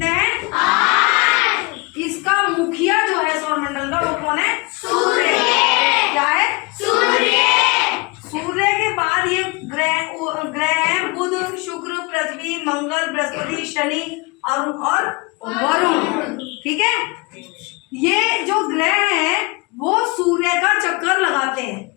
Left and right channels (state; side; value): quieter; right; 27.2 dB